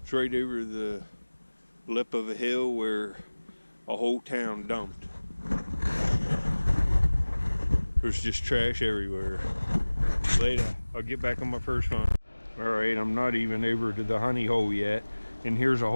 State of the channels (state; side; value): inverted; both; correlation -1.00